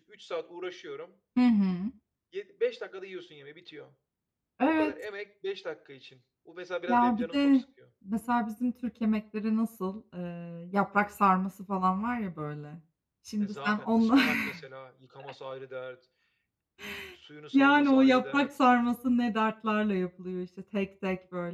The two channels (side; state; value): both; identical; correlation 1.00